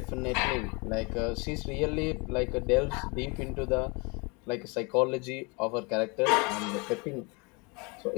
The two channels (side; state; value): right; quieter; 29.7 dB